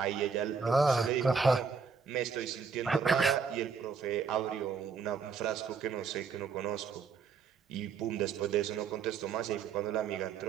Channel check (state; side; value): quieter; left; 5.6 dB